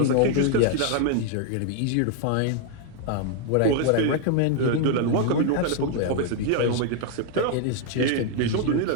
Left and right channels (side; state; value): both; different; correlation 0.00